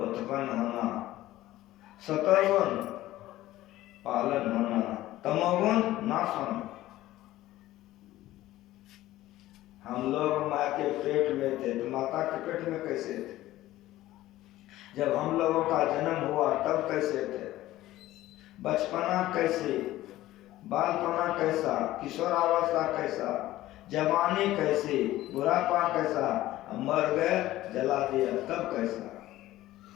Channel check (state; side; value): quieter; right; 15.6 dB